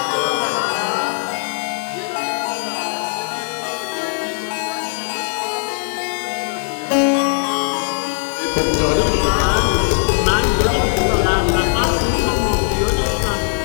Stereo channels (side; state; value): right; silent; 62 dB below the other